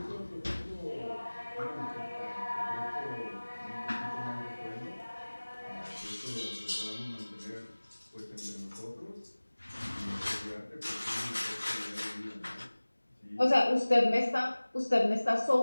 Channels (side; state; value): both; inverted; correlation -1.00